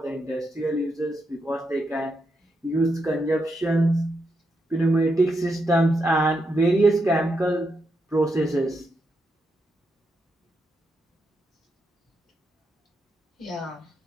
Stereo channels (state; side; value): normal; both; correlation 0.83